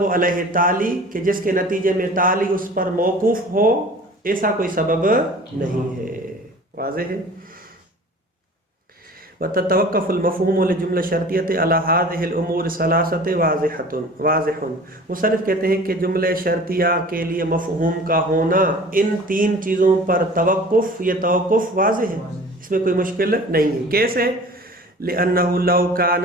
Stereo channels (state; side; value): normal; both; correlation 0.43